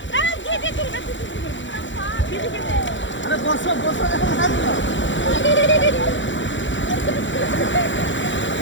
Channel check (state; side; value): late; right; 0.54 ms